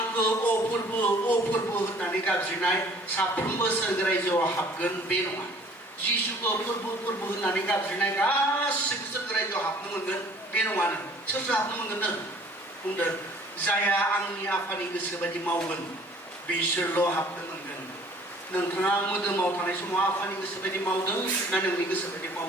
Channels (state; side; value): normal; both; correlation 0.53